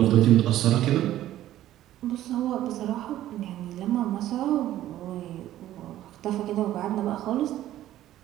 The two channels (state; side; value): quieter; left; 13.4 dB